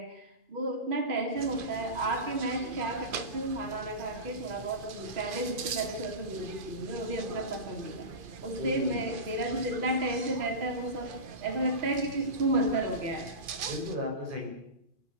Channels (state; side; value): late; left; 2.5 ms